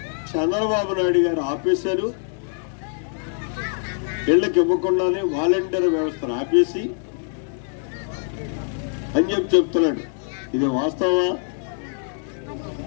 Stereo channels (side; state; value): right; silent; digital silence